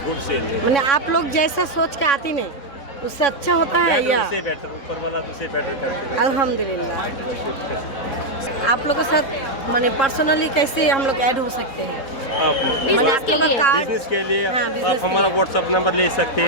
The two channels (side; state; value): right; late; 3.7 ms